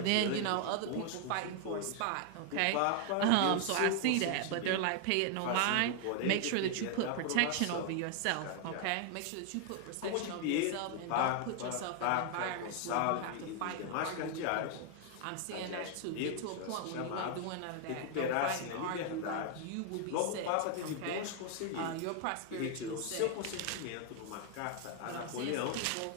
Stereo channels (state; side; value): different; both; correlation 0.00